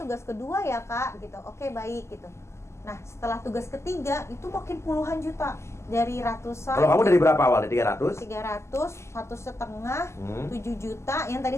kedua ya, Kak, gitu. Oke, baik gitu. Nah, setelah tugas ketiga itu makin puluhan juta dari ratusan. Kalau kamu dari berapa awalnya? 300? 300, 1,5, Hmm. 7 juta. Yang tadi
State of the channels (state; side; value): late; right; 0.13 ms